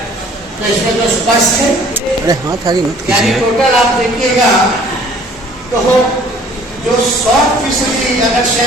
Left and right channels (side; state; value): both; normal; correlation 0.54